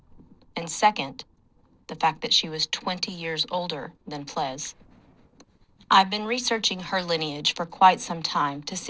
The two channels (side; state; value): both; identical; correlation 1.00